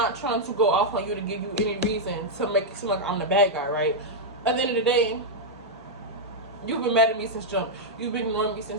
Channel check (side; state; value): both; normal; correlation -0.04